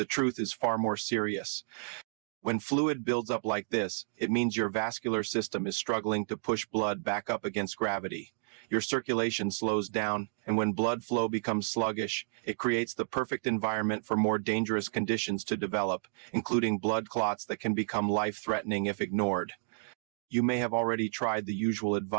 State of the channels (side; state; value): left; silent; digital silence